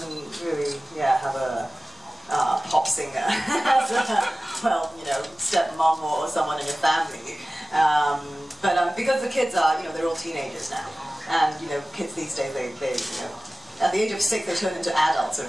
really have a pop singer as stepmom or someone in your family. But because the kids are they're all teenagers now, and kids these days they at the age of 6 they turn into adults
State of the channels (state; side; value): normal; both; correlation 0.97